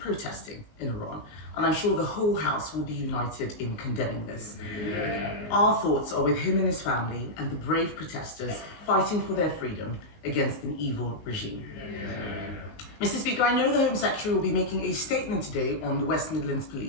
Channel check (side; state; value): right; late; 19 ms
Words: in Iran, and I'm sure the whole House will be united in condemning this. Our thoughts are with him and his family and the brave protesters fighting for their freedom against an evil regime. Mr. Speaker, I know the Home Secretary will be making a statement today on the West Midlands